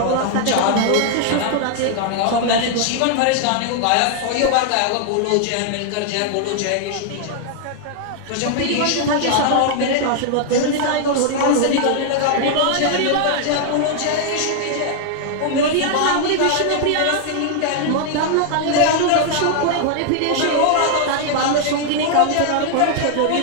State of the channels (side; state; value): both; different; correlation 0.00